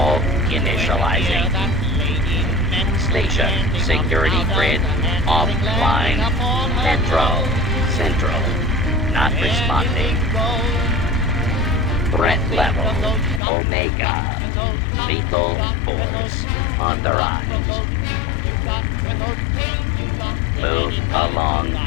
initializing. Station security grid offline. Metro Central not responding. Threat level Omega. Lethal force on the rise. Move along,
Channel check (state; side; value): drops out; right; at 13.4 s